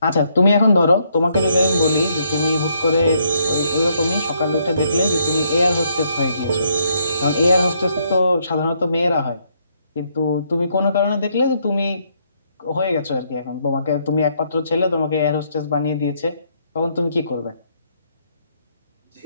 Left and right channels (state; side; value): inverted; both; correlation -0.72